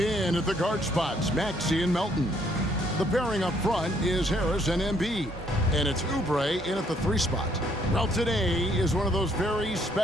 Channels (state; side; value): normal; both; correlation 0.67